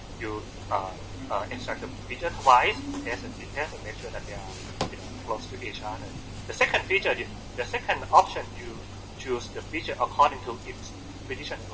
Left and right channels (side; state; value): both; identical; correlation 1.00